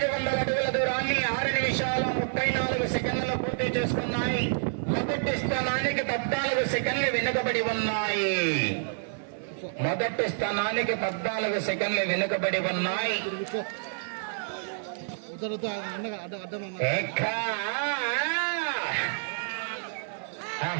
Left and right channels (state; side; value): silent; left; 59 dB below the other